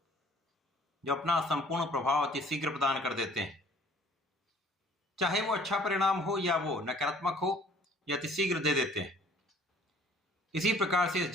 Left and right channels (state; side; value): normal; both; correlation 0.55